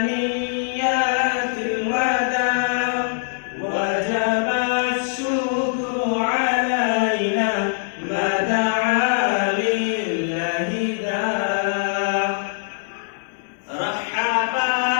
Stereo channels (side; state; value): right; silent; 61 dB below the other